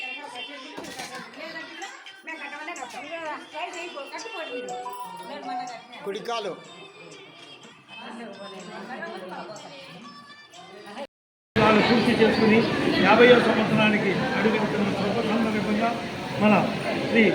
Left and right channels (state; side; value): identical; both; correlation 1.00